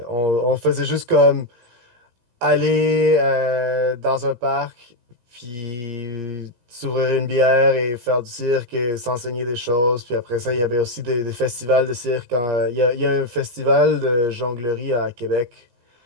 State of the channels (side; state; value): left; late; 17 ms